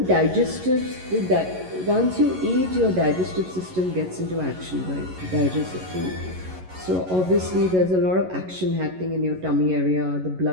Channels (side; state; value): left; late; 11 ms